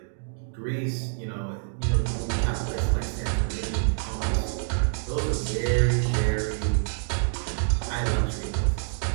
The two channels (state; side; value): silent; left; 60 dB below the other